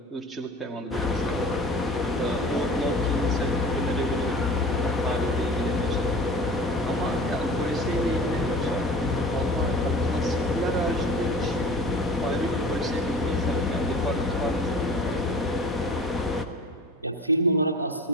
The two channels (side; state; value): both; normal; correlation 0.40